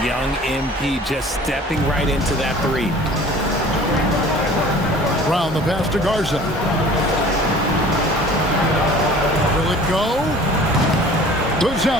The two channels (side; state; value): both; normal; correlation 0.47